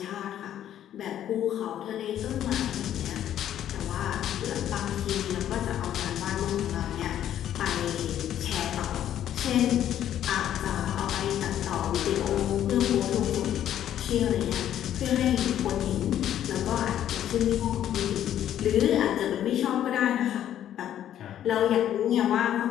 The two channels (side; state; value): right; quieter; 11.0 dB